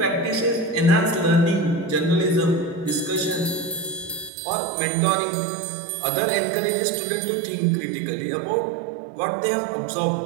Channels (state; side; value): drops out; left; at 4.3 s